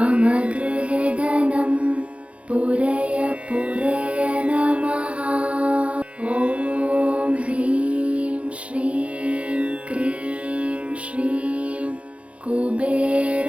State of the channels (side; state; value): left; late; 0.062 ms